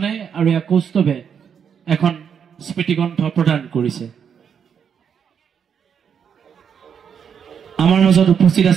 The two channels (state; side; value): quieter; left; 7.5 dB